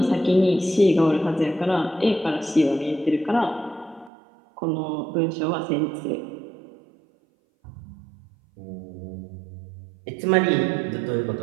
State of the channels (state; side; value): drops out; left; at 4.1 s